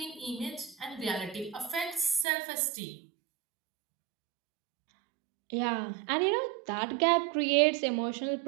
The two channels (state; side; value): drops out; left; at 2.2 s